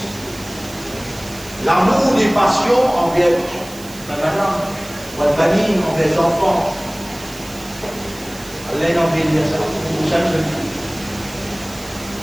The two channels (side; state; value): right; noise; hiss, 17 dB below the sound